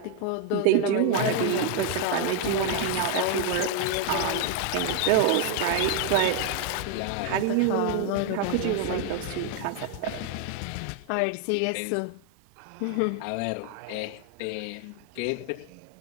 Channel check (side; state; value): both; different; correlation 0.01